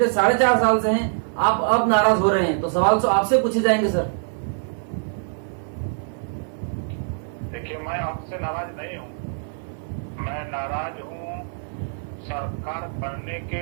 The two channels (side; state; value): left; silent; 63 dB below the other